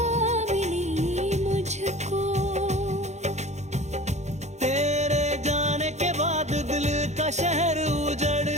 मिली मुझको। तेरे जाने के बाद दिल का शहर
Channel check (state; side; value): late; left; 0.33 ms